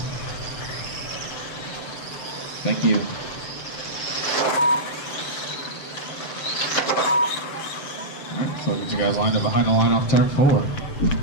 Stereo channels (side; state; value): right; late; 7.5 ms